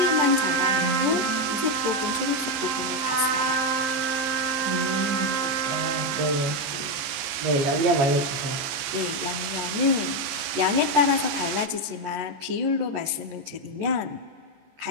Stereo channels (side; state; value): left; late; 14 ms